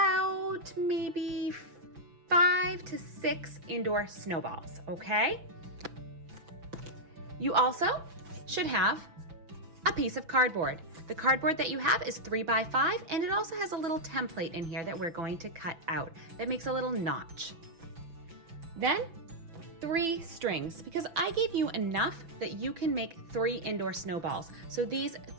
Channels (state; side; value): late; left; 6.0 ms